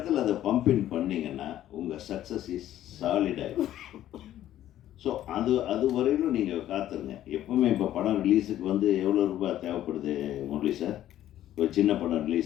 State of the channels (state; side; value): quieter; right; 12.5 dB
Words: அதை பம்பின் பண்ணிங்கன்னா உங்கள் சக்ஸஸ் இஸ் சாலிடாகும். ஸோ அது வரையிலும் நீங்கள் காத்துருங்க. எப்போவுமே இப்போ படம் ரிலீஸுக்கு வந்து எவ்வளோ ரூபாய் தேவைப்படுது முரளி சார்? ஒரு சின்ன படம்